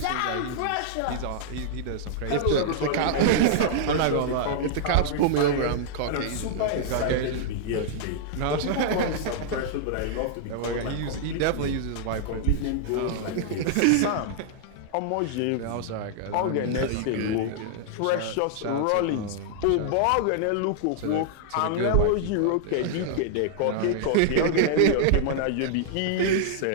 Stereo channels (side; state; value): both; different; correlation -0.01